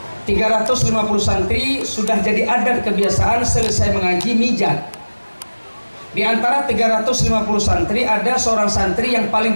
350 santri sudah jadi adat kebiasaan selesai mengaji mijat. Di antara 350 santri ada seorang santri yang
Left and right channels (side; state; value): both; inverted; correlation -1.00